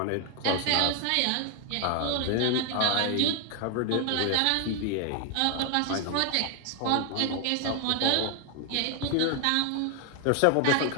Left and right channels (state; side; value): different; both; correlation 0.00